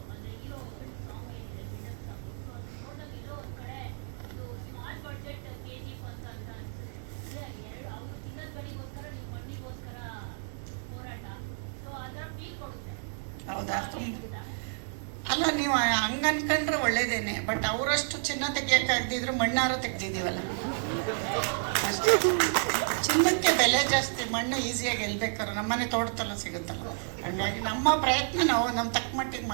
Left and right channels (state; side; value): silent; left; digital silence